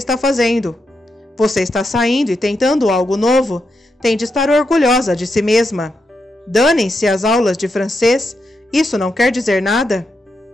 fazendo. Você está saindo e tentando algo novo. Tem de estar orgulhosa de si mesma. Danem-se as aulas de francês. Isso não quer dizer nada.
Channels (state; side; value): normal; both; correlation 0.84